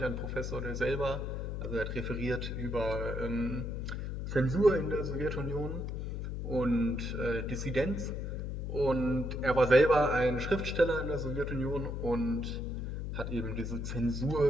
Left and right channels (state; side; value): noise; left; hum, 4 dB below the sound